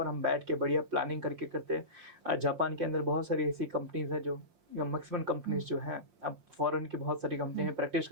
हम बैठ के बढ़िया प्लानिंग करके करते हैं। जापान के अंदर बहुत सारी ऐसी कंपनीज है जो मैक्सिमम कंपनीज जो हैं, अब फॉरेन की बहुत सारी कंपनी है प्रैक्टिस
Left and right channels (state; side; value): late; left; 5.7 ms